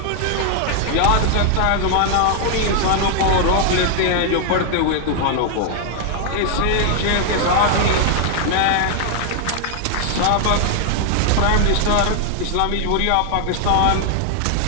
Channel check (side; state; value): both; different; correlation 0.00